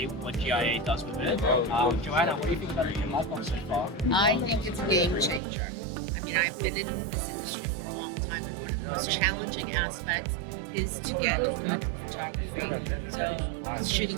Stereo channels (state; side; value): drops out; left; at 5.4 s